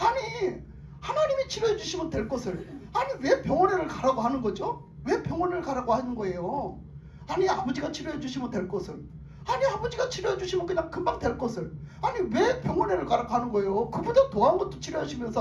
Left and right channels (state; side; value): identical; both; correlation 1.00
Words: 하나님이 치료해 주시면 될 것을 아니 왜 병원에를 가라고 하는 거죠? 왜 병원을 가라고 하는 거예요? 아니 아버지가 치료해 주시면 될 것을, 아니 아버지가 치료해 주시면 그냥 금방 될 것을 아니 왜 병원에를 가라고 하는 거예요? 그보다 더한 것도